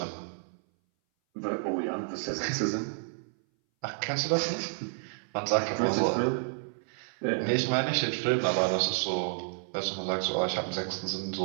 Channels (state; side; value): silent; left; 58 dB below the other